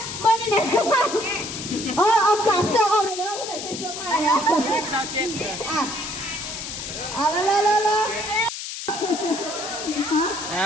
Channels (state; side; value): noise; left; hiss, 8 dB below the sound